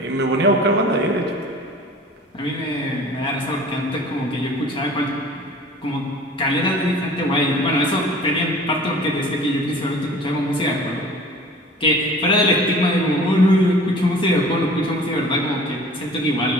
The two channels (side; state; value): both; normal; correlation 0.45